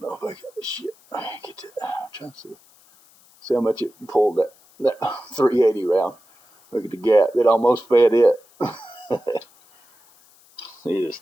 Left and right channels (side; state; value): left; noise; hiss, 29 dB below the sound